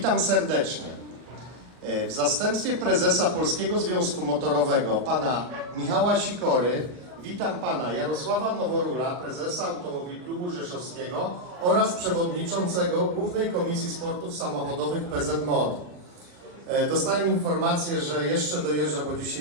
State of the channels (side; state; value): left; late; 40 ms